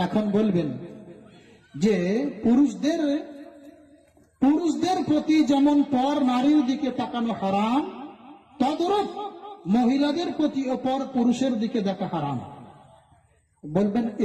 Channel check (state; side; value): identical; both; correlation 1.00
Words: এখন বলবেন যে পুরুষদের প্রতি যেমন পর নারীর দিকে তাকানো হারাম, তদ্রূপ মহিলাদের প্রতি পর পুরুষের দিকে দেখা হারাম। বলবেন